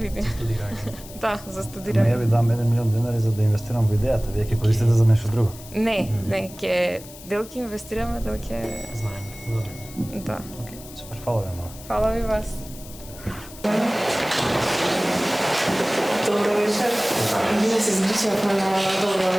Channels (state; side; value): noise; left; hiss, 17 dB below the sound